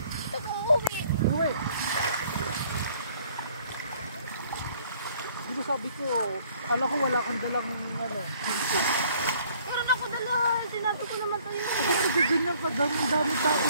Ito kong uwi. Uwi. Di ba sabi ko, akala ko wala kang dalang ano. Meron ako dala. Sinabi ko naman sa'yo. Bakit ganyan ka? Dami tao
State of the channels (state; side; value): inverted; both; correlation -0.59